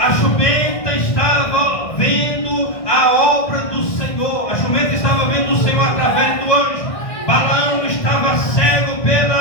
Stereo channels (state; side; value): late; right; 1.6 ms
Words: jumenta estava vendo a obra do Senhor. A jumenta estava vendo o Senhor através do anjo. Balaão estava cego